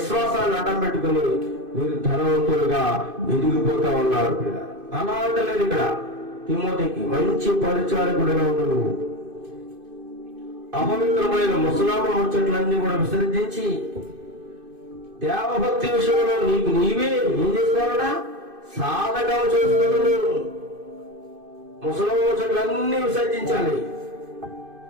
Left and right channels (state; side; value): late; left; 2.5 ms